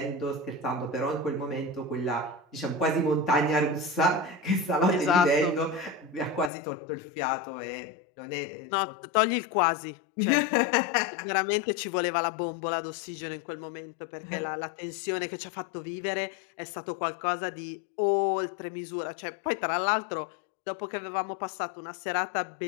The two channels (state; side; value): drops out; right; at 6.5 s